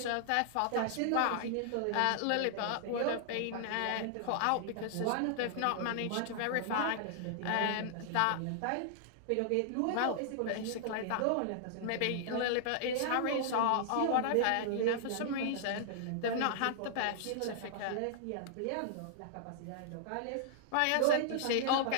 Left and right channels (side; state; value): both; different; correlation -0.01